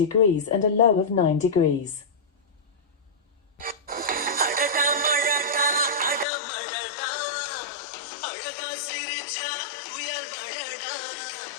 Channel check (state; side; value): drops out; right; at 6.2 s